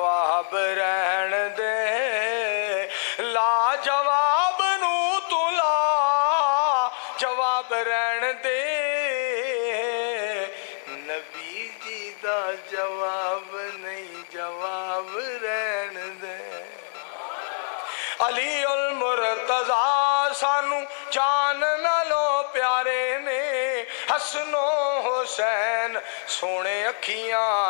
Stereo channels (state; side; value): silent; right; digital silence